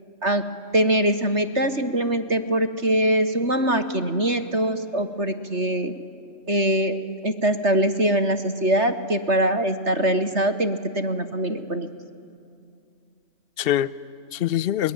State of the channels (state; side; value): late; left; 3.3 ms